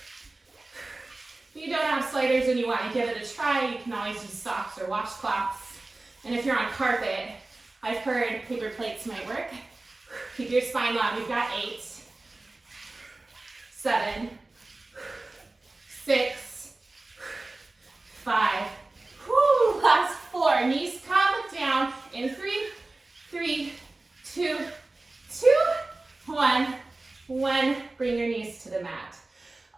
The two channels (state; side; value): quieter; left; 3.1 dB